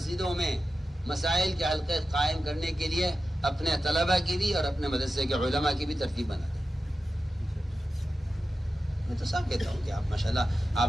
میں مسائل کے حلقے قائم کرنے کے لیے اپنے طلبہ کی بھی اور اپنے مدرسے کے علماء کی بھی ترتیب بنا دیں. میں تو صاف کہتا ہوں کہ آپ ماشاءاللہ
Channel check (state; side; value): normal; both; correlation 0.92